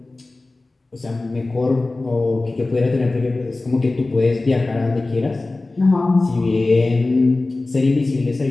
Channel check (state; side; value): quieter; right; 3.2 dB